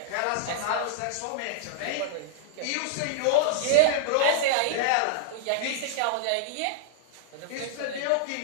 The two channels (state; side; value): different; both; correlation -0.01